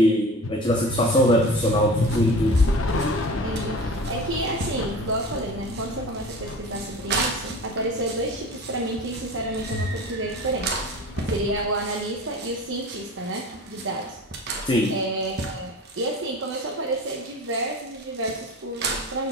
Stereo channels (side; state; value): both; normal; correlation 0.37